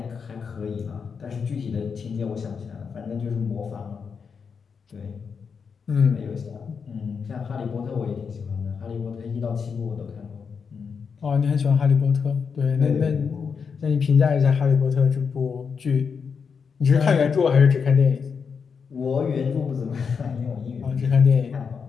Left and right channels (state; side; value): quieter; right; 6.0 dB